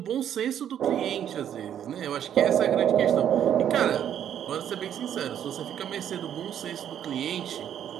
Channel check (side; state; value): left; quieter; 9.8 dB